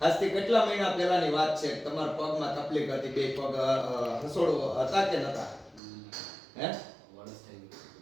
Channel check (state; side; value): drops out; left; at 5.8 s